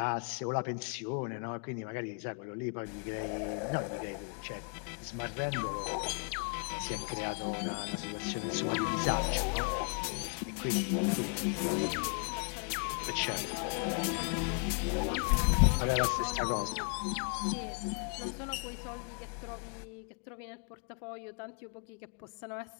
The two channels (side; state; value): right; quieter; 38.3 dB